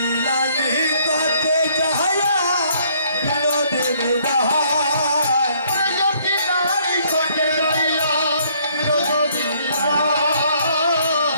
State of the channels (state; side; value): inverted; both; correlation -0.64